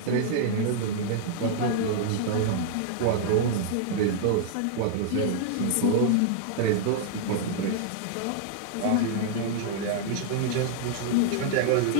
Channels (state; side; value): different; both; correlation -0.01